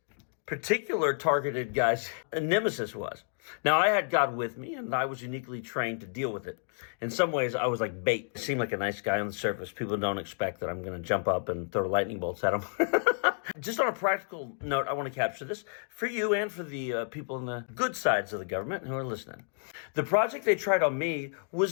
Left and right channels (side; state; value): right; silent; 57 dB below the other